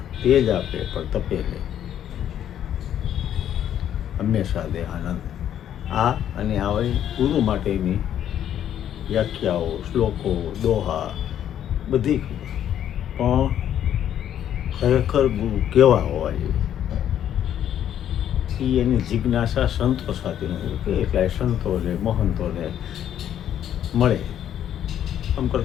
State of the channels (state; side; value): quieter; right; 10.3 dB